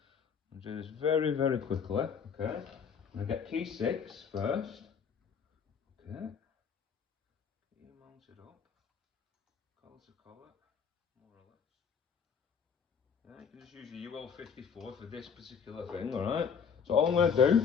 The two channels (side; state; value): right; quieter; 6.7 dB